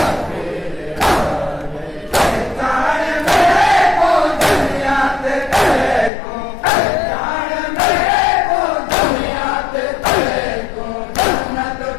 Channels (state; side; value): drops out; right; at 6.1 s